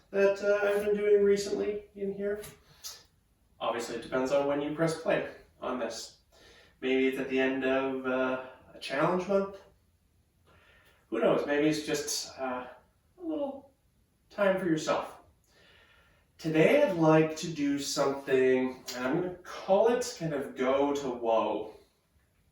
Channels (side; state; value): both; identical; correlation 1.00